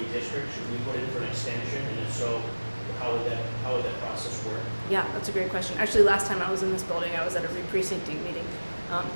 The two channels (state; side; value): inverted; both; correlation -1.00